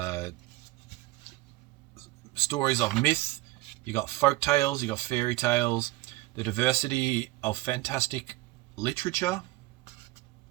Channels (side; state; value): left; quieter; 20.1 dB